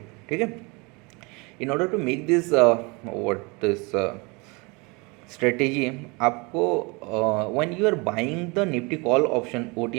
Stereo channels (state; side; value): quieter; left; 28.2 dB